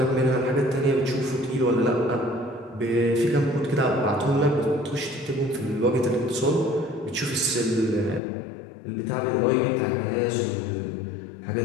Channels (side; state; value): right; drops out; at 8.2 s